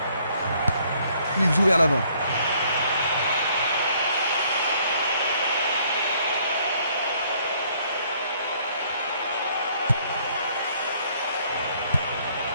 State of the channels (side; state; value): both; inverted; correlation -0.63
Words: Il joue vers l'avant.